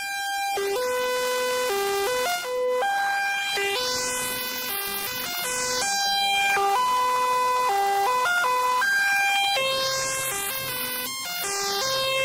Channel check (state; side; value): identical; both; correlation 1.00